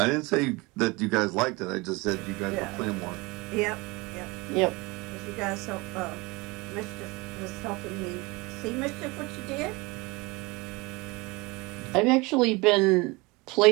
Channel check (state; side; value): quieter; left; 24.8 dB